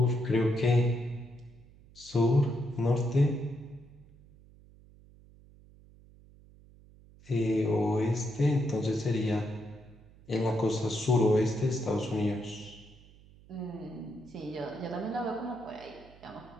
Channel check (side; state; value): right; noise; hum, 24 dB below the sound